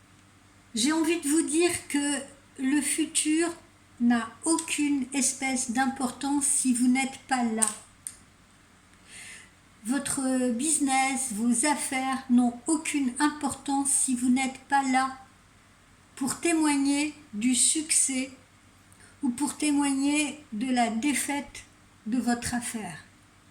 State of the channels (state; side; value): identical; both; correlation 1.00